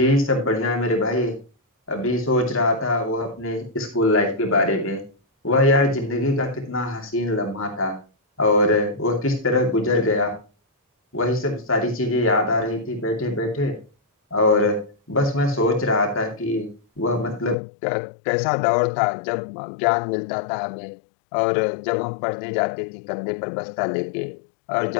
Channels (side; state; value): right; drops out; at 17.6 s